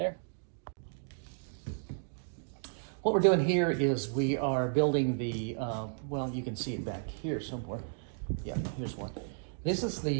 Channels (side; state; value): left; silent; digital silence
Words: What we're doing here is we are building the, well, you can see it back here somewhere. Yeah, here's one. This is